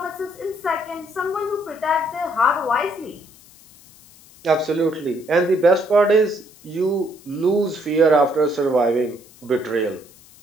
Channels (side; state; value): left; noise; hiss, 25 dB below the sound